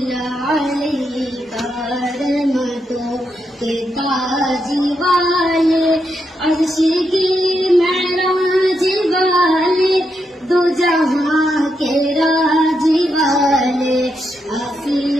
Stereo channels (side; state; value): both; normal; correlation 0.82